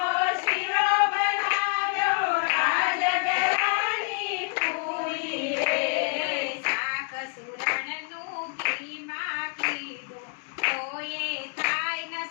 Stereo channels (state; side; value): quieter; right; 37.8 dB